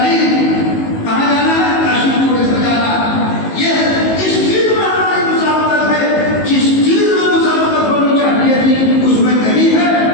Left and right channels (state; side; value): late; right; 19 ms